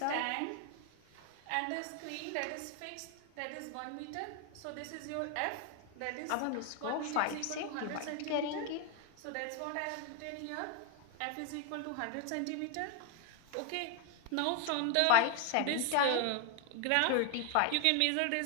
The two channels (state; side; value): different; both; correlation 0.01